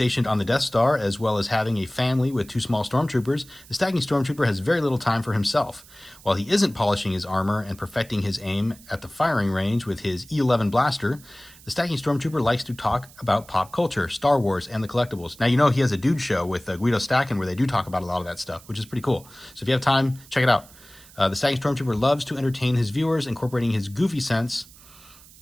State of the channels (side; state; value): right; noise; hiss, 22 dB below the sound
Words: on the Death Star, as well as having a family with 2 small stormtroopers, the Stacking Stormtrooper has very little time for himself. While he isn't polishing his armor and perfecting his aim at the firing range with his E11 blaster, the Stacking Stormtrooper likes to talk about pop culture, Star Wars, and the collectibles. Now, he has a dude show with Guido Stacking where they do talk about a lot of that stuff, which is pretty cool. So if you have time, check it out. The Stacking Stormtrooper loves to entertain his viewers, incorporating his goofy sense.